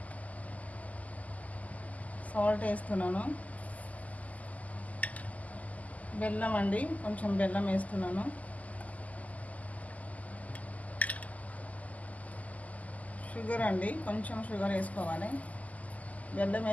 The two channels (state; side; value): late; right; 0.075 ms